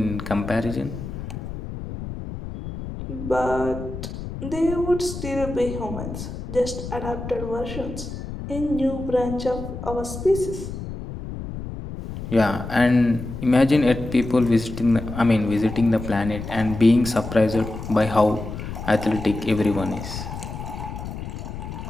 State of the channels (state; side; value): noise; left; rumble, 8 dB below the sound